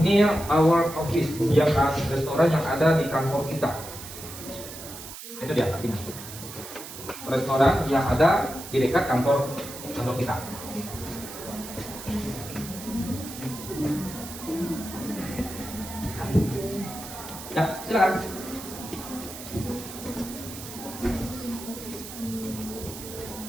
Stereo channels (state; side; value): noise; right; hiss, 12 dB below the sound